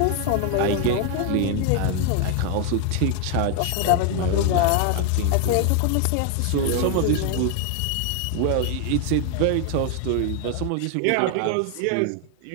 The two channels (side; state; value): both; different; correlation 0.01